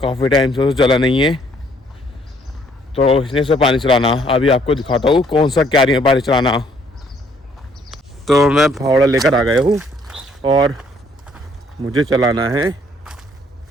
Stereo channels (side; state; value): both; normal; correlation 0.64